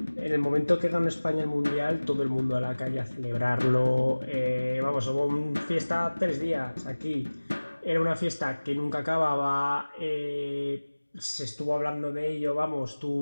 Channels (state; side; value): inverted; both; correlation -1.00